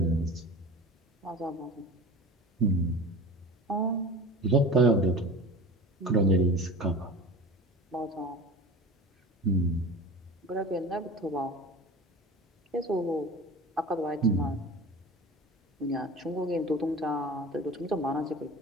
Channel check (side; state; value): both; normal; correlation 0.35